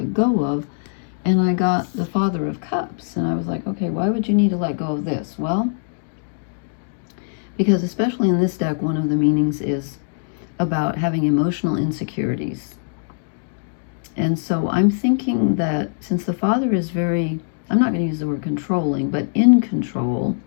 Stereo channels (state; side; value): silent; right; digital silence